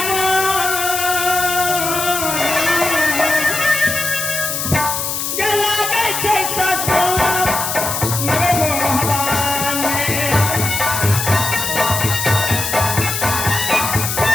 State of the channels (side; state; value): left; noise; hiss, 2 dB below the sound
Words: गला गई जैसा